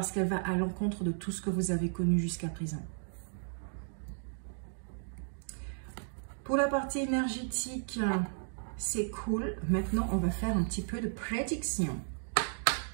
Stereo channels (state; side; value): silent; left; digital silence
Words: qu'elle va à l'encontre de tout ce que vous avez connu jusqu'à présent. Pour la partie énergétique, c'est cool. Maintenant, on va faire un petit peu de prédiction